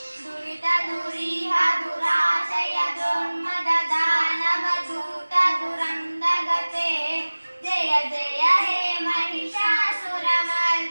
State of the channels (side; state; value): both; inverted; correlation -1.00